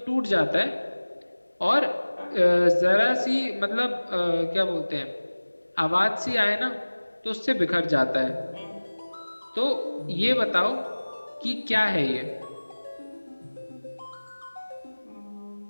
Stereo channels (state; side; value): inverted; both; correlation -1.00